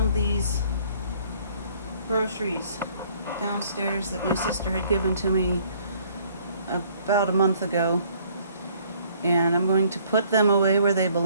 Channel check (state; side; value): inverted; both; correlation -0.60